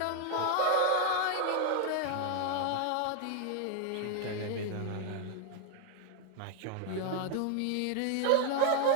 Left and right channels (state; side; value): different; both; correlation 0.00